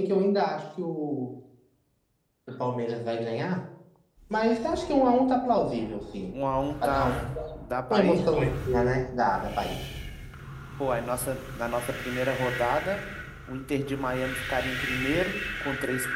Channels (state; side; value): identical; both; correlation 1.00